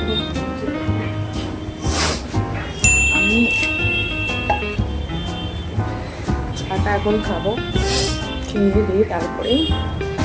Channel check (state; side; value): identical; both; correlation 1.00